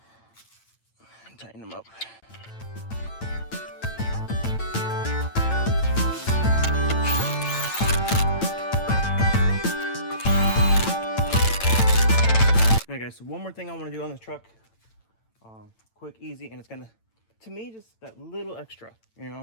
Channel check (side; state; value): right; late; 8.9 ms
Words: and tighten them up. Alright guys, so one more thing I want to do on this truck. Quick, easy, and it's gonna, to me, just that little extra, you